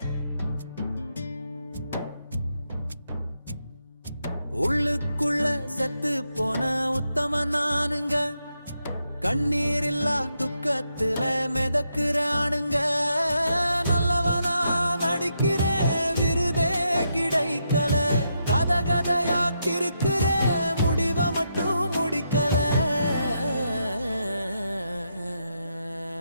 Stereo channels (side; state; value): both; inverted; correlation -0.81